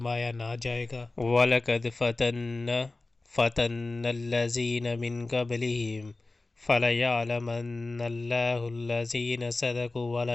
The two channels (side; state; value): right; quieter; 3.3 dB